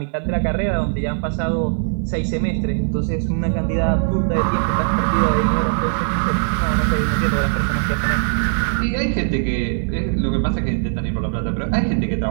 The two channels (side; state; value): left; silent; 60 dB below the other